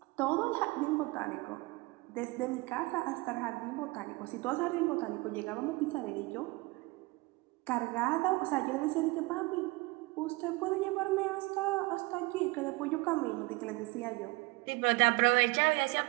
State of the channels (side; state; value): left; quieter; 23.5 dB